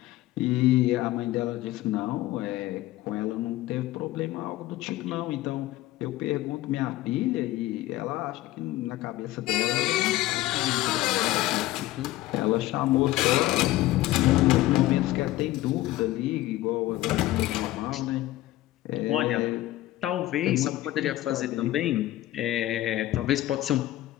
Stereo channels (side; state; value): right; quieter; 16.1 dB